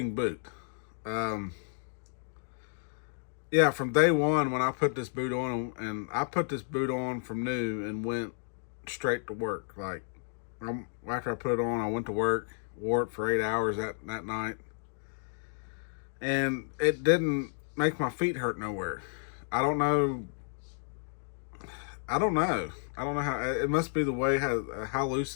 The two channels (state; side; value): silent; right; digital silence